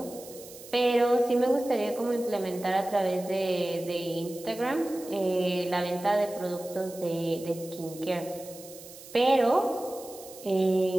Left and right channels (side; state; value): right; noise; hiss, 17 dB below the sound